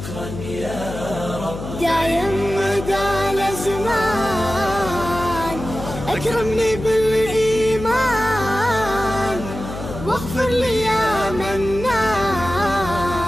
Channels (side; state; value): left; noise; hum, 9 dB below the sound